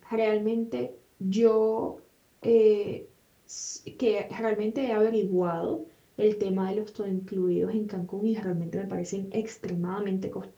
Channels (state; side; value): identical; both; correlation 1.00